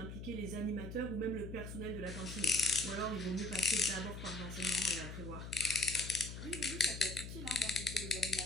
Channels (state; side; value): noise; left; hum, 8 dB below the sound